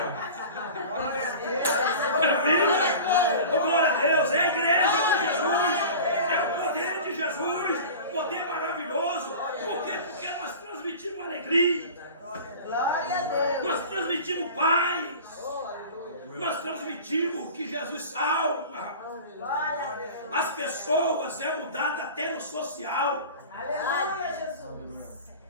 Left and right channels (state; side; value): inverted; both; correlation -0.37